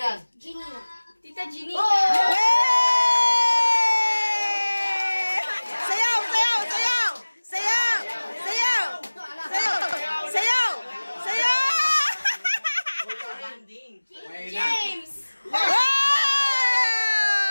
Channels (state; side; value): inverted; both; correlation -1.00